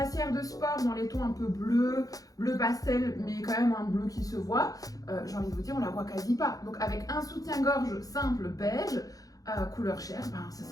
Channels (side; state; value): right; late; 0.17 ms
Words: de sport dans les tons un peu bleu pastel, mais quand même un bleu qui se voit. J'ai envie de vous dire, on la voit quasi pas. Donc avec un soutien-gorge simple beige, couleur chair, ce